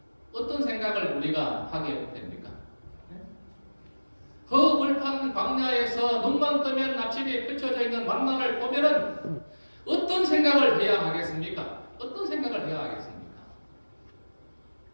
어떤 생각을 우리가 하게 됩니까? 허벌판 광야에서 눈만 뜨면 아침에 펼쳐져 있는 만나를 보면은 어떤 생각을 해야 하겠습니까? 어떤 생각을 해야 하겠습니까?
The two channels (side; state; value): both; inverted; correlation -1.00